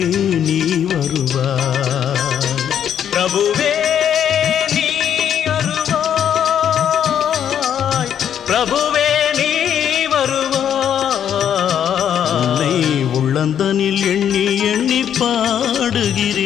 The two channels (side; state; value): right; quieter; 9.2 dB